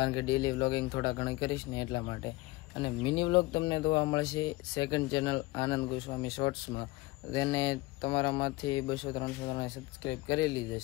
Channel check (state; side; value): quieter; right; 20.7 dB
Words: કે ડેલી વ્લોગિંગ થોડા ઘણા કરીશ ને એટલા માટે. અને મિની વ્લોગ તમને જોવા મળશે સેકન્ડ ચેનલ આનંદ ગોસ્વામી શોર્ટ્સમાં. તેને તમારામાંથી 200-300 જણાએ સબસ્ક્રાઈબ કરેલી જ